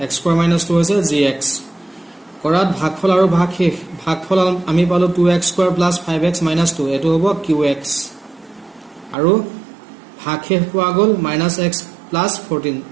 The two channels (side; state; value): left; drops out; at 9.2 s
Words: x square minus 2 হৈছে gx কৰাত ভাগফল আৰু ভাগশেষ ভাগফল আমি পালো 2x square plus 5x minus 2 এটো হ'ব qx আৰু ভাগশেষ পোৱা গল minus x plus